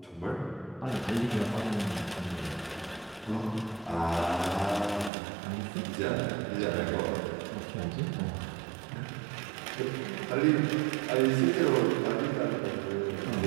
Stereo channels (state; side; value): drops out; left; at 5.1 s